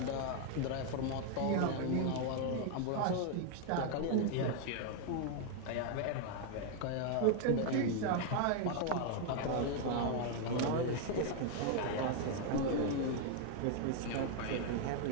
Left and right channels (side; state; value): both; different; correlation 0.00